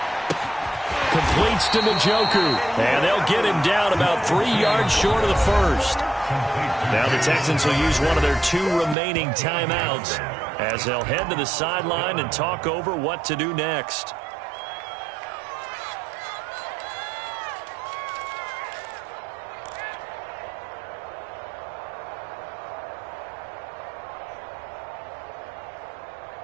Completes to Njoku. And they'll get him down about 3 yards short of the first. Now the Texans will use one of their 2 remaining timeouts as they'll head to the sideline and talk over what to do next.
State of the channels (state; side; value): drops out; left; at 9.0 s